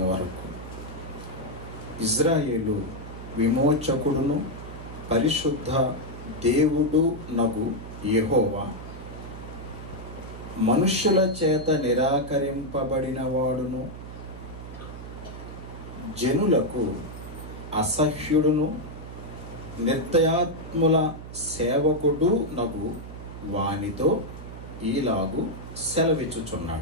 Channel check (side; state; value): right; noise; hum, 12 dB below the sound